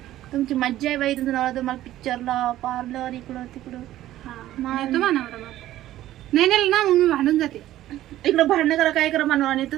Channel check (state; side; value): quieter; left; 14.0 dB